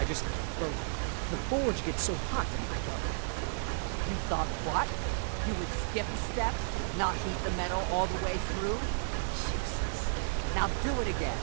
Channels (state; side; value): silent; left; 56 dB below the other